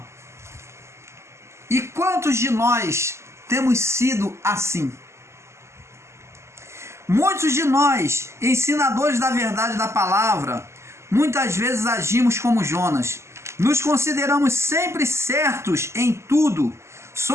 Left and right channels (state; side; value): late; left; 0.13 ms